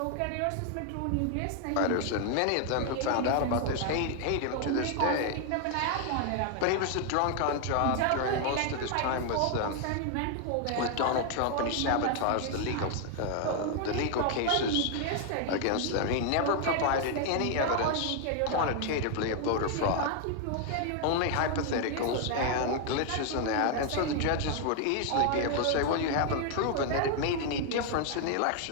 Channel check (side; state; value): both; different; correlation 0.00